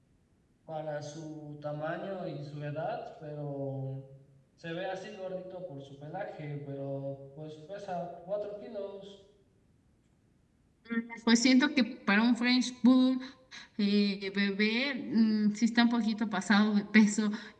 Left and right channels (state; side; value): identical; both; correlation 1.00